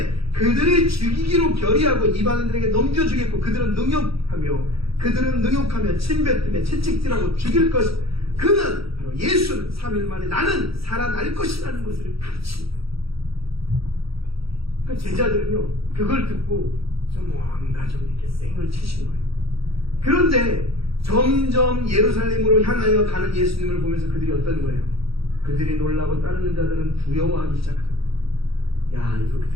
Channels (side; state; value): left; late; 0.76 ms